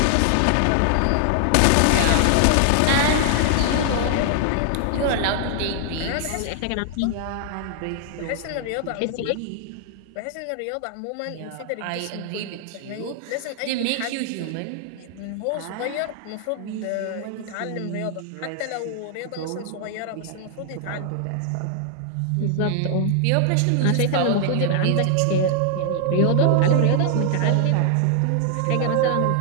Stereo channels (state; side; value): different; both; correlation 0.00